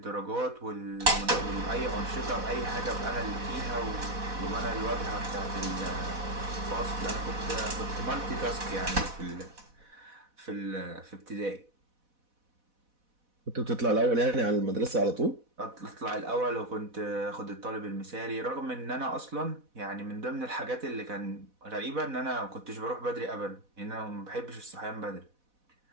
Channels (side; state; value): left; late; 4.1 ms